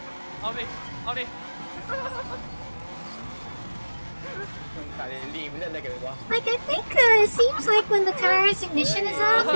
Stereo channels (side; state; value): both; inverted; correlation -1.00